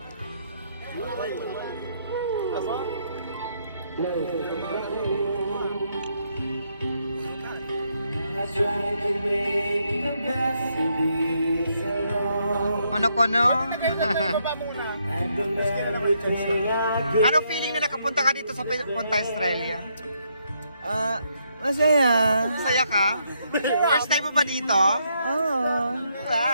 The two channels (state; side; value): inverted; both; correlation -0.76